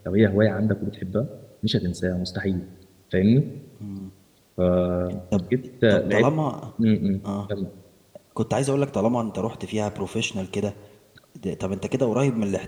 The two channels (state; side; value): identical; both; correlation 1.00